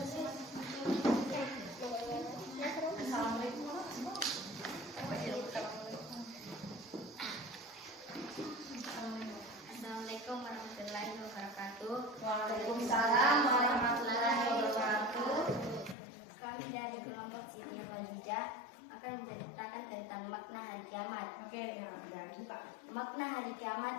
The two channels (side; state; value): right; drops out; at 16.0 s